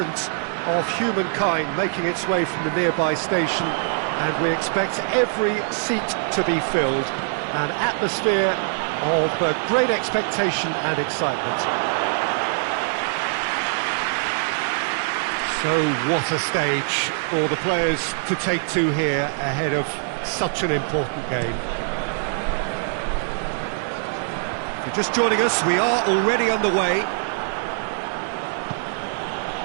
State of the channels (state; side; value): silent; left; digital silence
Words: of humankind making its way from the nearby station, and we expect every seat to be filled. An atmosphere of great expectation and excitement. So what a stage for the players to take to here ahead of such an important game. If you're just joining us, we are already underway.